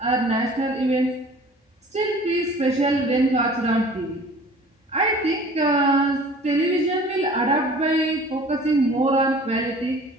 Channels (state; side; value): normal; both; correlation 0.47